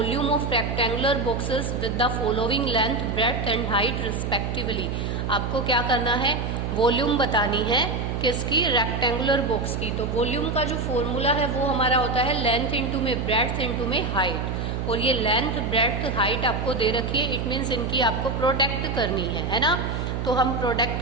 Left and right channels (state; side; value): noise; right; hum, 2 dB below the sound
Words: of rectangular boxes with the following length, breadth and height respectively. आपको क्या करना है, वॉल्यूम बतानी है किसकी, रेक्टेंगुलर बॉक्स की। तो वॉल्यूम का जो फॉर्मूला है वो हमारा होता है लेंथ इंटू में ब्रेड्थ इंटू में हाइट। और ये लेंथ ब्रेड्थ हाइट आपको दे रखी है, इट मीन्स इनकी आपको प्रोडक्ट करनी है ना। तो हम